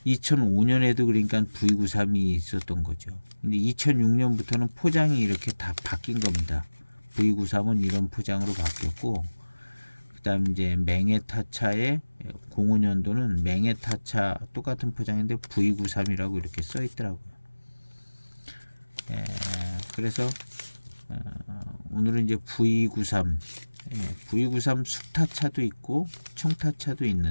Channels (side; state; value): both; inverted; correlation -1.00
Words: 그러니까 V93이 있었던 거죠. 근데 2006년부터는 포장이 이렇게 다 바뀐 겁니다. V93은 이런 포장으로 바뀌었고 그다음 이제 맹해타차의 05년도는 맹해타차 똑같은 포장인데 V93이라고 이렇게 써 있더라고요. 그래서 오늘은 이제 V93 V93 숙타차도 있고 청타차도